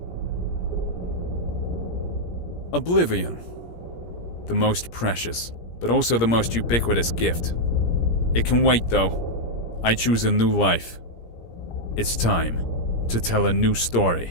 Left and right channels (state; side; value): late; right; 17 ms